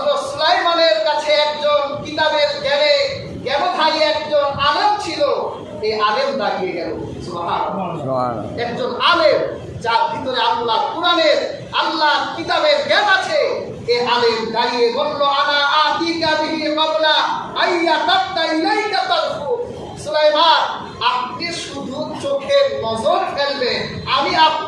সুলাইমানের কাছে একজন কিতাবের জ্ঞানধারী একজন আলেম ছিল। এই আলেম দাঁড়িয়ে গেল। সুবহানাল্লাহ। একজন আলেম যার ভিতরে আল্লাহ কুরআনের, আল্লাহ কিতাবের জ্ঞান আছে। এই আলেম দাঁড়িয়ে বলল, আনা আতিকা বিহি ক্বাবলা আইয়াতাতা ইলাইকা তারফু। সুলাইমান, আপনি শুধু চোখের নজর ফেলবেন, আমি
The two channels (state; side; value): identical; both; correlation 1.00